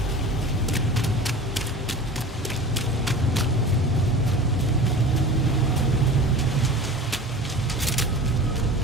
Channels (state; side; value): normal; both; correlation 0.37